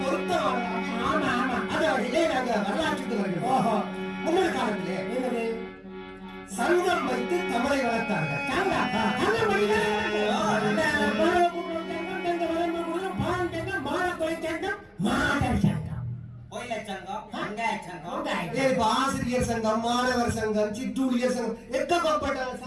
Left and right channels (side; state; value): both; identical; correlation 1.00